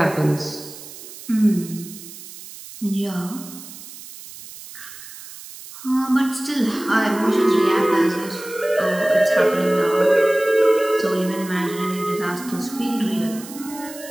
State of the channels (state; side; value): noise; right; hiss, 15 dB below the sound